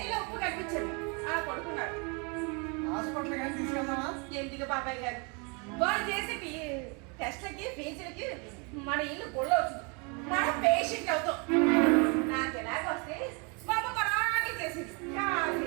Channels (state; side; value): quieter; left; 32.8 dB